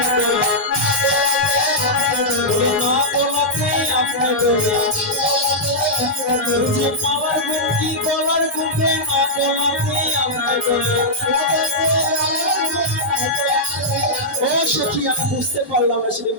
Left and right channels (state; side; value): normal; both; correlation -0.08